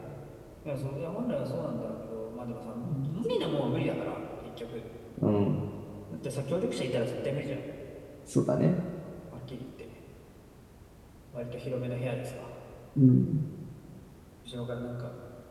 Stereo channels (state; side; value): identical; both; correlation 1.00